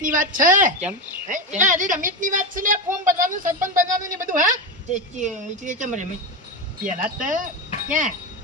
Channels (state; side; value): normal; both; correlation 0.15